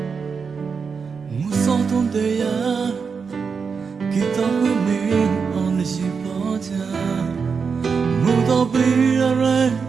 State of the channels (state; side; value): quieter; left; 5.6 dB